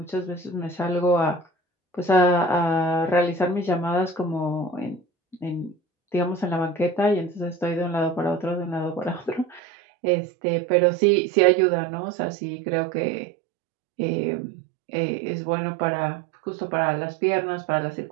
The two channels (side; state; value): left; drops out; at 9.6 s